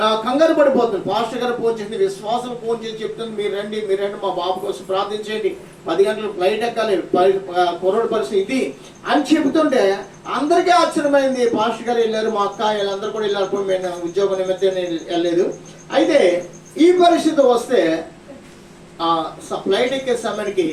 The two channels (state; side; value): identical; both; correlation 1.00